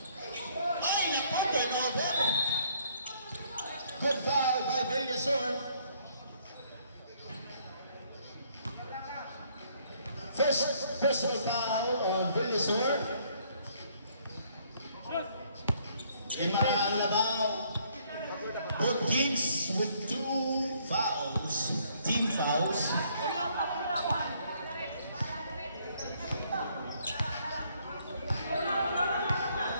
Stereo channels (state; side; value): inverted; both; correlation -0.65